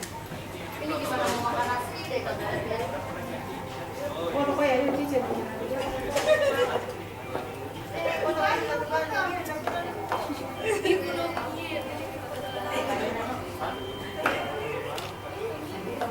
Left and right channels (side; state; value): both; identical; correlation 1.00